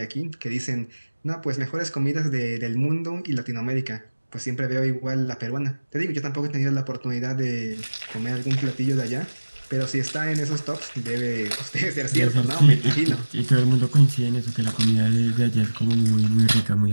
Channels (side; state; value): both; inverted; correlation -1.00